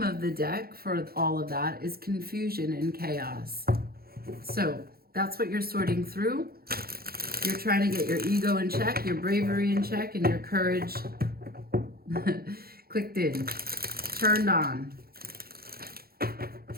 of the deck for all of that is confusion and chaos. So that's what you're sorting through. You're trying to get your ego in check, your bravery in check, and your courage clicked in. Turned on.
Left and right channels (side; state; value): left; late; 0.44 ms